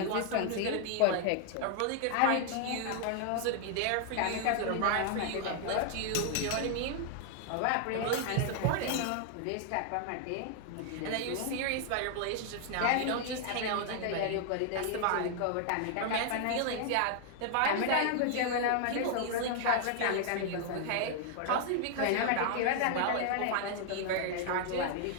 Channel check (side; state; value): both; different; correlation 0.00